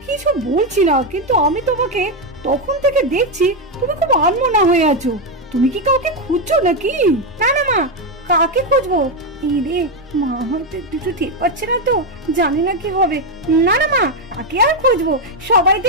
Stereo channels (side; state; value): both; normal; correlation 0.06